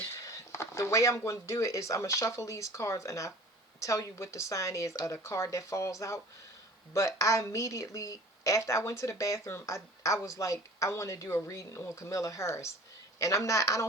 the way I'm going to do it is I'm going to shuffle these cards and I tell you what the sign is of the card that falls out. But I immediately, after I went to the bathroom, I was like, I want to do a reading on Camilla Harris. And I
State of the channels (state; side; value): normal; both; correlation 0.44